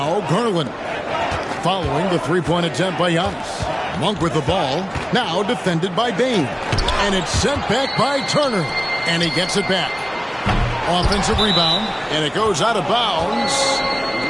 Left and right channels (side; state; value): both; identical; correlation 1.00